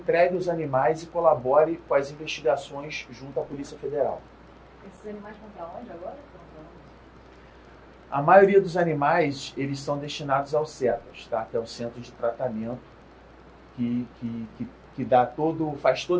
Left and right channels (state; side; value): identical; both; correlation 1.00